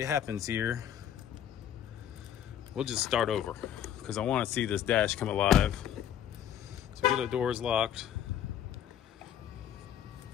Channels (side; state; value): right; quieter; 10.0 dB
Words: happens here, we'll just start over because I want to see this dash come alive. So get the doors locked.